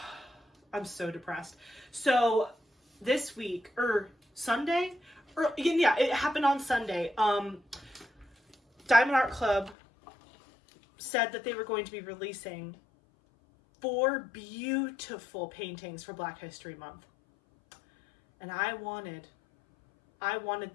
I'm so depressed. So this week, Sunday, yeah, it happened on Sunday. Diamond Art Club said that they were going to be releasing 4 beautiful paintings for Black History Month. And I wanted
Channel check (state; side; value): drops out; right; at 9.8 s